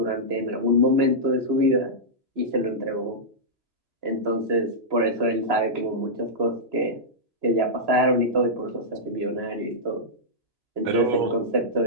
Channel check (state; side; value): late; left; 2.9 ms